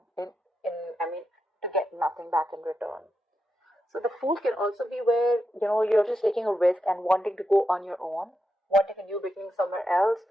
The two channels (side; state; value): both; normal; correlation 0.86